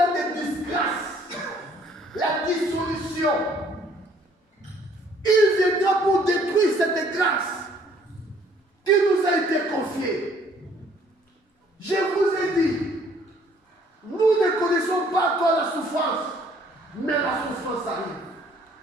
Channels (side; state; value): both; normal; correlation 0.60